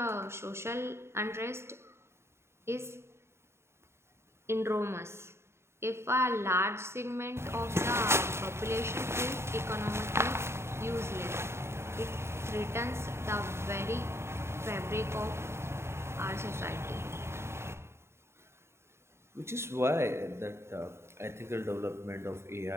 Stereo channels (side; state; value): left; late; 0.13 ms